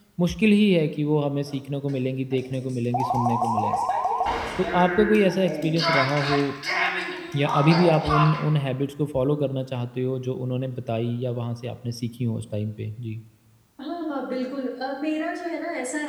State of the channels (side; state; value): both; identical; correlation 1.00